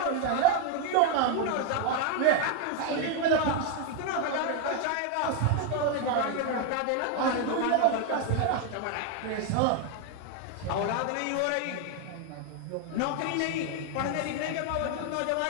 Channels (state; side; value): different; both; correlation 0.01